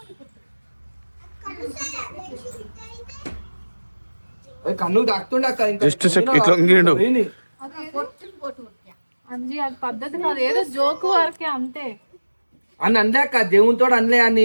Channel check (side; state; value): both; inverted; correlation -1.00